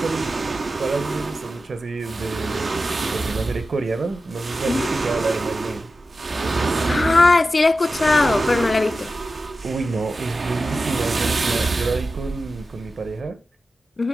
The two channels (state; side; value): normal; both; correlation 0.92